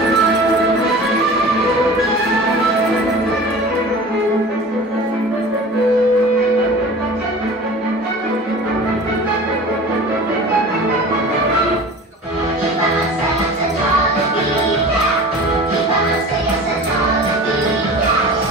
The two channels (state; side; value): normal; both; correlation 0.39